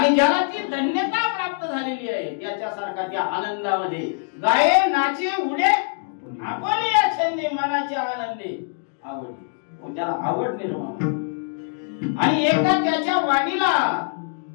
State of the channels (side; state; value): right; silent; digital silence